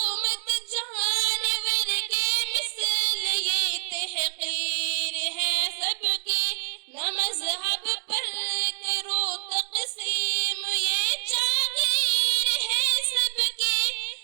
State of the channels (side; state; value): left; silent; digital silence